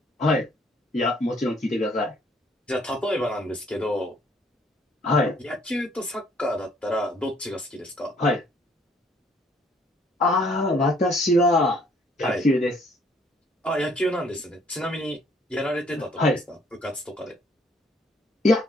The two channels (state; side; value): normal; both; correlation 0.63